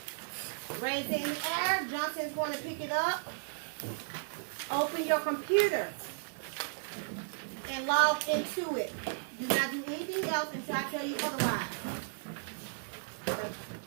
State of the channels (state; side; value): silent; left; digital silence